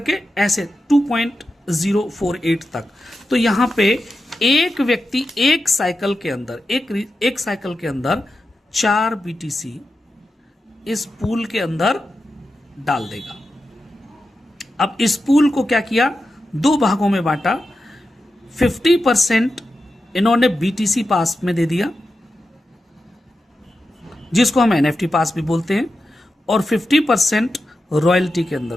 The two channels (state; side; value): normal; both; correlation 0.90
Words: ऐसे 2.048 तक। तो यहां पे एक व्यक्ति एक साइकिल के अंदर, एक साइकिल के अंदर 4 BTC इस पूल के अंदर डाल देगा। अब इस पूल को क्या किया, 2 भागों में बांटा। 50% इन्होंने BTC पास में दे दिया, जिसको हम NFT पास भी बोलते हैं, और 50% रॉयल्टी के अंदर